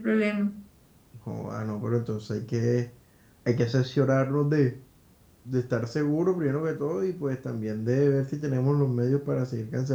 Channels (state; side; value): identical; both; correlation 1.00